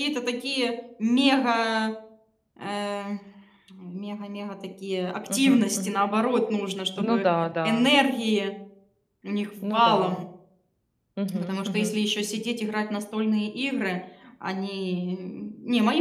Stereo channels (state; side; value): identical; both; correlation 1.00